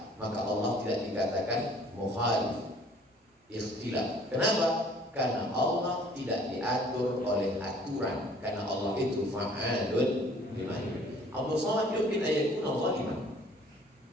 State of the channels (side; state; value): both; normal; correlation 0.55